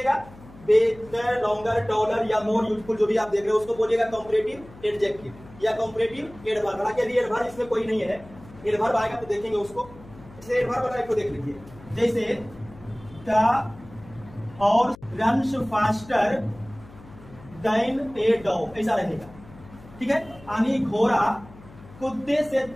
बेटर, लॉन्गर, टॉलर या मोर यूजफुल जो भी आप देख रहे हो उसको बोलिएगा कंपैरेटिव एडजेक्टिव या कंपैरेटिव एडवर्ब। हालांकि यदि एडवर्ब इसमें कोई नहीं है, एडवर्ब आएगा तो देखेंगे उसको। जैसे एडवर्ब वाला को देख लीजिए, जैसे द और runs faster than a dog, ऐसा रहेगा। ठीक है, यानी घोड़ा कुत्ते से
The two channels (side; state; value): left; noise; hum, 20 dB below the sound